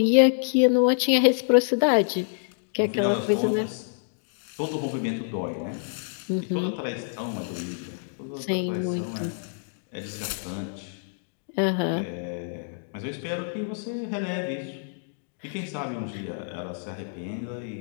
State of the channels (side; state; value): right; silent; digital silence